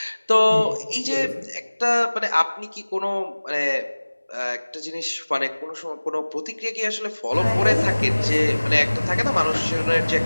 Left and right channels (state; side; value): inverted; both; correlation -1.00